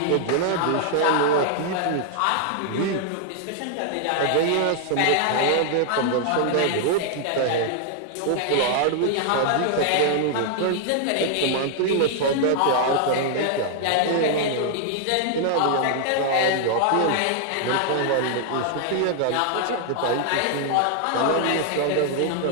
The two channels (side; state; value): both; different; correlation 0.00